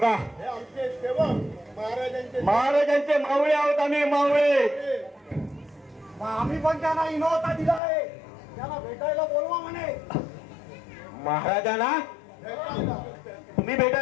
आमचे सेवक महाराजांचे मावळे आहोत आम्ही मावळे आम्ही पण त्यांना इनोता दिला आहे त्याला भेटायला बोलवा म्हणे। महाराजांना तुम्ही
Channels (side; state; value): right; drops out; at 7.8 s